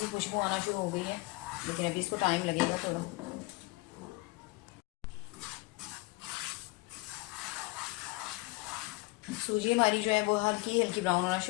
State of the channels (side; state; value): right; quieter; 23.7 dB